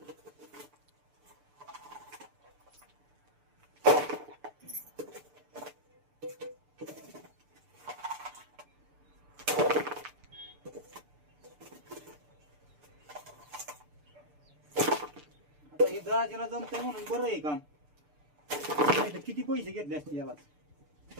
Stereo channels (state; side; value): late; left; 6.8 ms